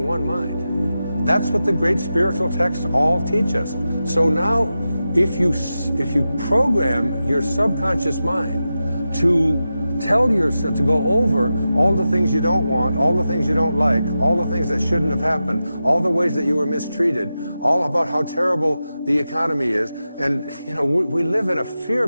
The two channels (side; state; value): both; inverted; correlation -0.92